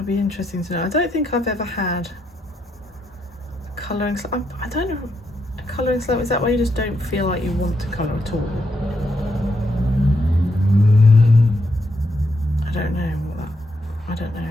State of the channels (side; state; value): both; normal; correlation 0.79